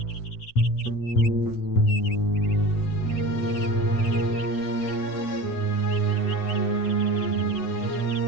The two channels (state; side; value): late; right; 8.0 ms